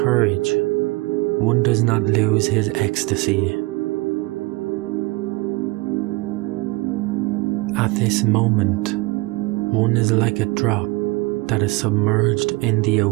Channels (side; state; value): left; quieter; 23.8 dB